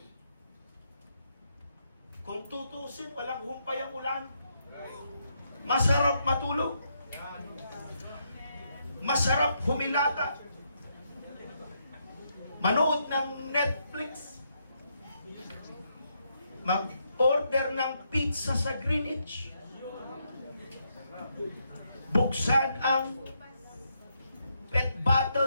Kung tutusin, walang humpay ang ulan. Masarap matulog. Masarap humilata. Manood ng Netflix. Mag-order ng pizza sa Greenwich. Buksan ang pet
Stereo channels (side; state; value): both; inverted; correlation -0.78